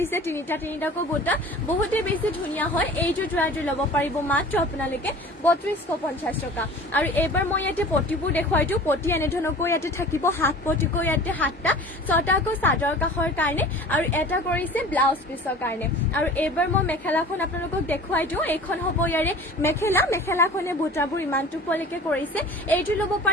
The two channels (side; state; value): both; normal; correlation 0.42